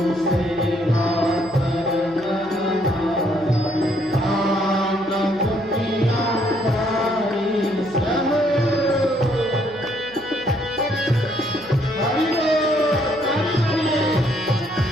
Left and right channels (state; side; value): noise; right; hum, 24 dB below the sound